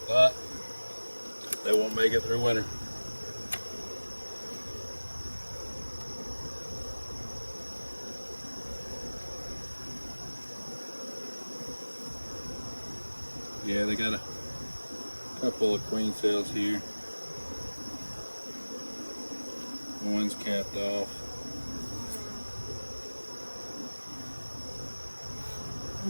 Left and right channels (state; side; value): inverted; both; correlation -1.00